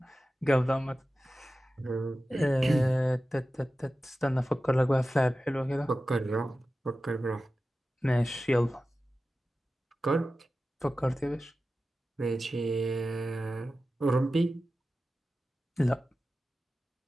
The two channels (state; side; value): normal; both; correlation 0.94